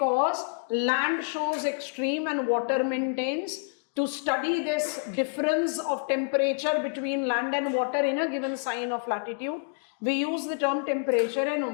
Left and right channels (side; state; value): right; silent; 59 dB below the other